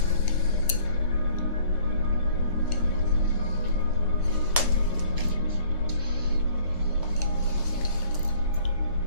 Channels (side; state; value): both; inverted; correlation -0.56